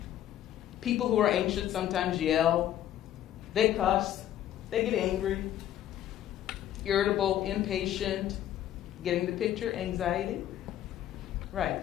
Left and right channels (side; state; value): right; quieter; 11.8 dB